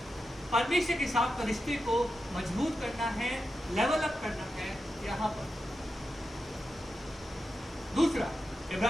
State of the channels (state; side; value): normal; both; correlation 0.89